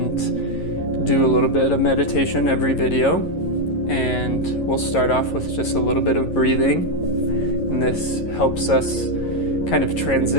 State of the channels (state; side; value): late; right; 11 ms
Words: do a little bit of meditation every video, and we'll start off with just a little bit of breathing, and this helps us kind of